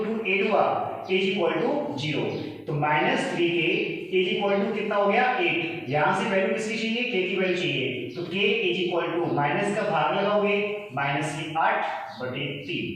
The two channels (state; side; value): identical; both; correlation 1.00